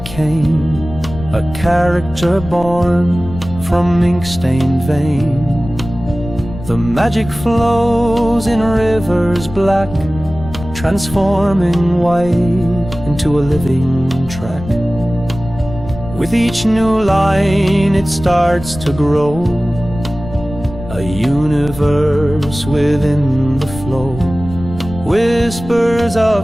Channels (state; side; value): noise; left; rumble, 12 dB below the sound